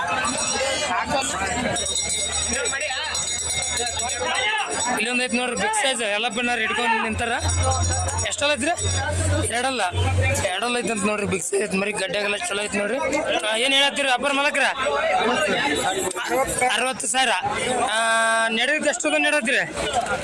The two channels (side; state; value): both; identical; correlation 1.00